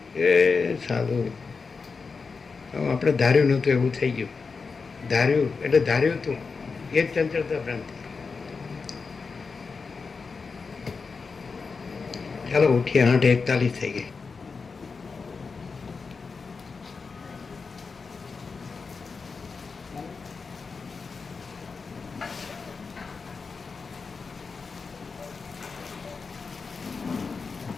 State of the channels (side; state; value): right; quieter; 4.8 dB